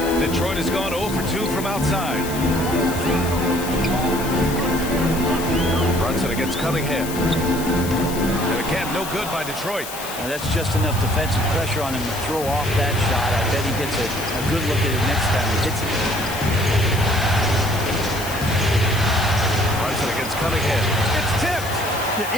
Detroit has gone 0 for 2 from outside. Brunson against Cunningham. And again, no good by Detroit. Now that's just enough defensive pressure on him to throw off that shot. I bet he gets a good look at it next time he hits it. Brunson against Cunningham. It's tipped. Yeah,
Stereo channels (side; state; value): left; noise; hiss, 10 dB below the sound